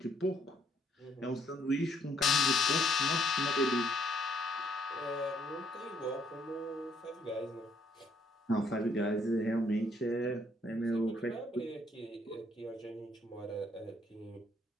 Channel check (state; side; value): normal; both; correlation 0.69